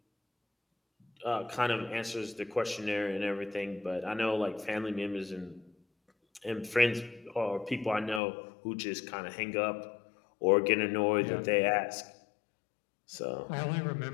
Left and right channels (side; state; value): right; drops out; at 8.2 s